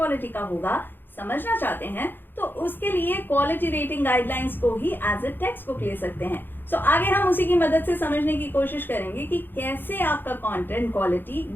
का होगा समझना चाहते हैं तो उसके लिए क्वालिटी रेटिंग गाइडलाइंस को ही एज ए टेक्स्ट बुक ले सकते हैं। सो आगे हम उसी की मदद से समझने की कोशिश करेंगे कि कैसे आपका कंटेंट क्वालिटी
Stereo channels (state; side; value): late; right; 0.097 ms